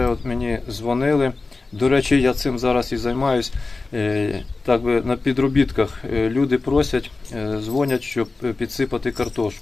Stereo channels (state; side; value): quieter; right; 3.7 dB